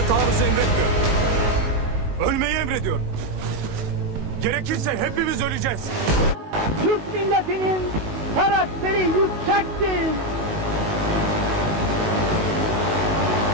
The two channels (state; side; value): late; left; 19 ms